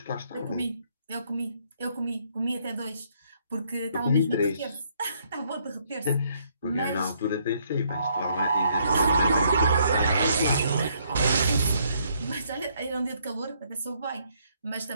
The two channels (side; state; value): both; inverted; correlation -0.70